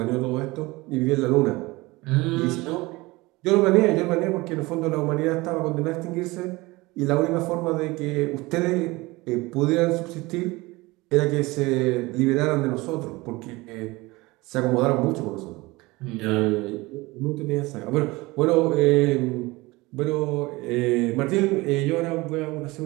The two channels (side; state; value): left; quieter; 21.9 dB